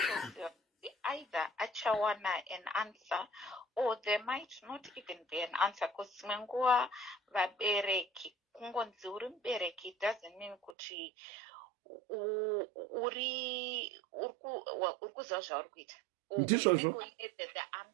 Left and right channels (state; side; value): drops out; left; at 10.8 s